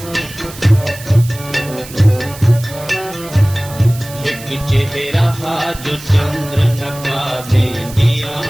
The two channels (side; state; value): right; noise; hiss, 15 dB below the sound